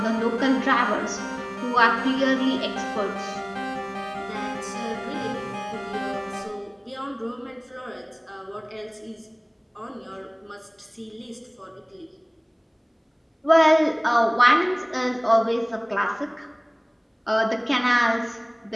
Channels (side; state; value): both; identical; correlation 1.00